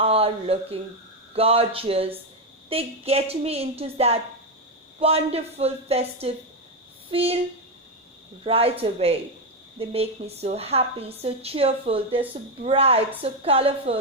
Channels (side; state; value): both; normal; correlation 0.07